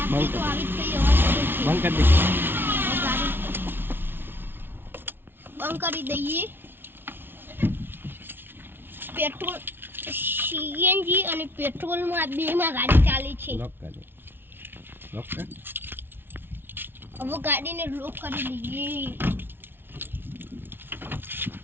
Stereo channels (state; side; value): late; left; 0.10 ms